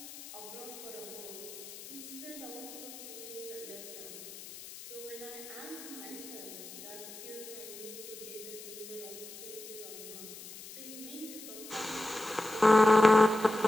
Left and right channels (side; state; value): left; noise; hiss, 13 dB below the sound